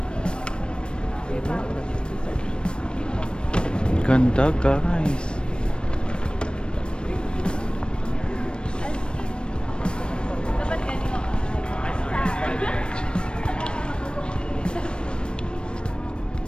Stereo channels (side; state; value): right; late; 0.055 ms